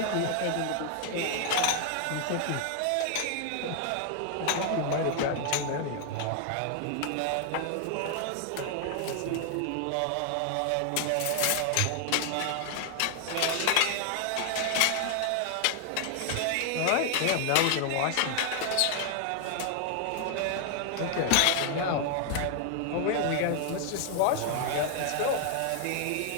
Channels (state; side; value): different; both; correlation 0.00